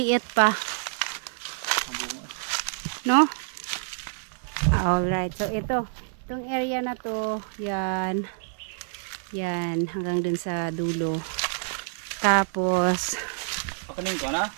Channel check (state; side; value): silent; left; 60 dB below the other